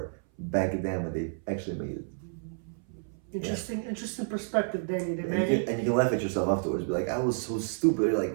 back then when they actually made it. Interesting perspective, Danny the And Manny. you can laugh at yourself afterwards. Be like, I was so stupid. You're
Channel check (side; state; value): left; silent; 58 dB below the other